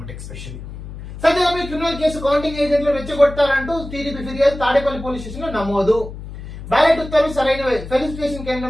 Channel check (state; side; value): noise; left; hum, 11 dB below the sound